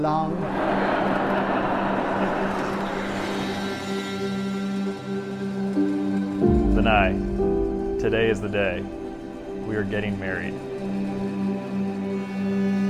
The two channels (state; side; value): identical; both; correlation 1.00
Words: Danae, today is the day. We are getting married.